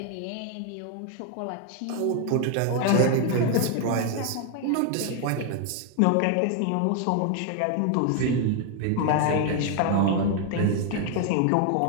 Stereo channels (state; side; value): different; both; correlation 0.01